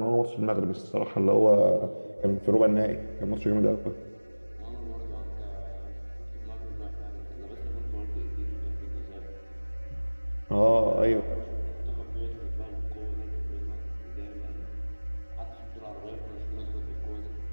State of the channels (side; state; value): both; inverted; correlation -1.00